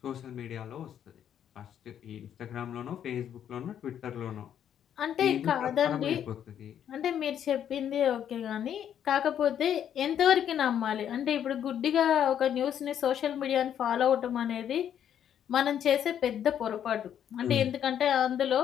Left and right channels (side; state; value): right; quieter; 9.5 dB